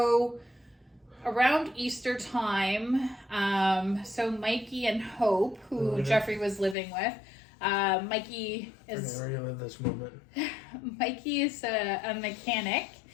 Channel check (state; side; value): drops out; right; at 6.8 s